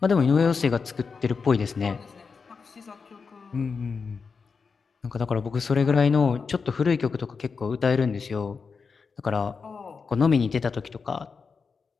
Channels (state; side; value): quieter; right; 5.2 dB